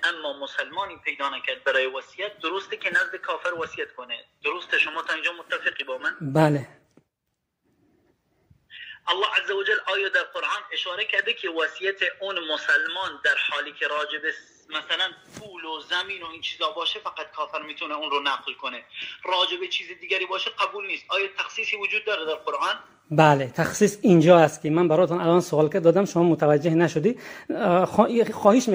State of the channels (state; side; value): identical; both; correlation 1.00